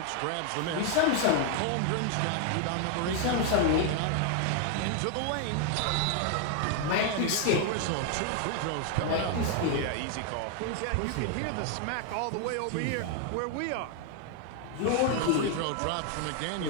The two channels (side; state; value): both; different; correlation 0.00